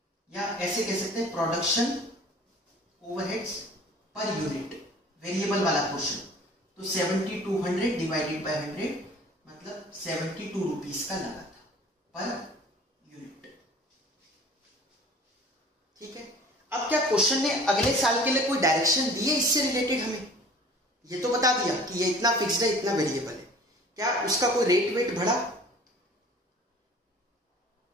या ऐसे कह सकते हैं production overheads per unit, variable वाला पोर्शन, तो 7200 डिवाइडेड बाय 100 मतलब 72 रुपीज का लगा था पर यूनिट। ठीक है, अब क्या क्वेश्चन ने अगले साल के लिए कोई डायरेक्शन दी है इससे रिलेटेड? हमें ये तो बता दिया कि ये इतना फिक्स्ड है, इतना वेरिएबल है, क्या उसका कोई रेट वेट बढ़ा?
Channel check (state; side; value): normal; both; correlation 0.47